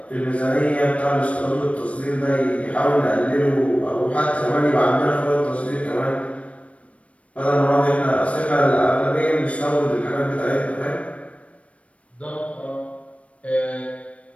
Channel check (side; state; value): right; late; 0.064 ms